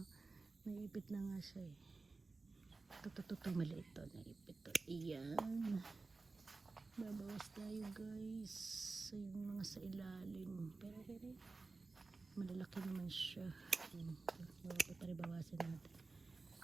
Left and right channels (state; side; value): quieter; left; 3.8 dB